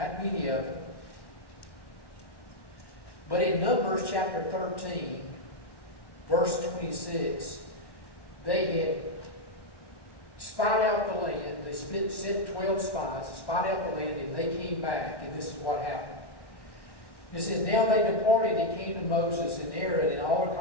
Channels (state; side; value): late; right; 1.1 ms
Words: many of them. But in Numbers chapter 13, verse 26, they had spied out the land. They sent 12 spies to spy out the land, and they came back, and this is what happened. It says, now they departed and came to Moses and Aaron and all the